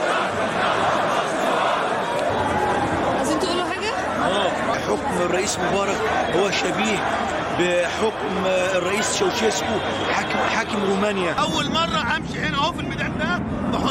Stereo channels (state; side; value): identical; both; correlation 1.00